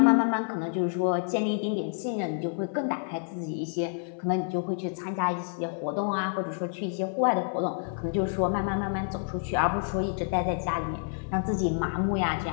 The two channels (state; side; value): silent; right; 59 dB below the other